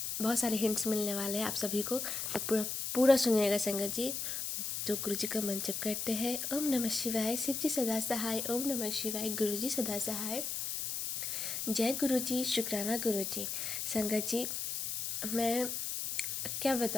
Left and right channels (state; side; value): noise; left; hiss, 3 dB below the sound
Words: बहुत सारे हिंट्स मिलने वाले हैं आप सभी को, तो पूरा पूरा सुनिएगा संगत जी। तो गुरु जी का मंत्र जप करते हैं। ओम नमः शिवाय, शिव जी सदा सहाय। ओम नमः शिवाय, गुरु जी सदा सहाय। जय गुरु जी, शुक्राना गुरु जी। संगत जी, मैं क्या